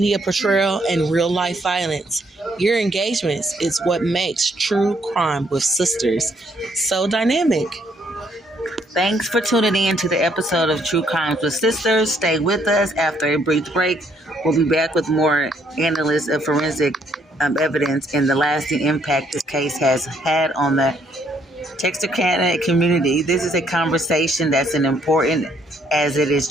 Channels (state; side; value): normal; both; correlation 0.69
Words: portrayal and real life violence. Your engagements is what makes True Crime with Sisters so dynamic. Thanks for tuning in to the episode of True Crimes with Sisters. Stay with us after a brief break. We'll be back with more analysis of forensic evidence and the lasting impact this case has had on the Texarkana community. This is a conversation that's as important as it is